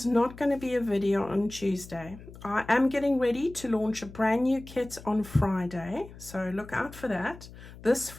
not going to be a video on Tuesday. I am getting ready to launch a brand new kit on Friday, so look out for that, this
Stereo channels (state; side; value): noise; left; hum, 17 dB below the sound